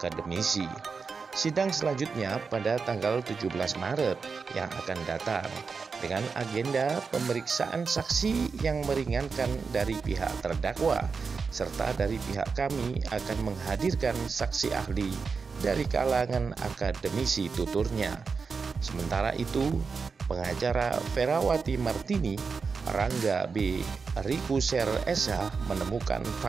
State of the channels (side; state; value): left; quieter; 5.1 dB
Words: Sidang selanjutnya pada tanggal 17 Maret yang akan datang dengan agenda pemeriksaan saksi yang meringankan dari pihak terdakwa, serta dari pihak kami akan menghadirkan saksi ahli dari kalangan akademisi, tuturnya. Sementara itu, pengacara Ferawati Martini, Rangga B. Rikuser SH, menemukan